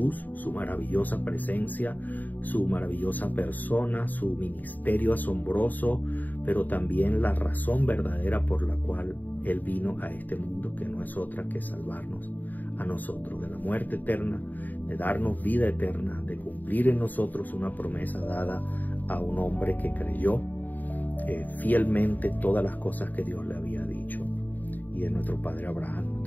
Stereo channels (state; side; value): late; right; 0.085 ms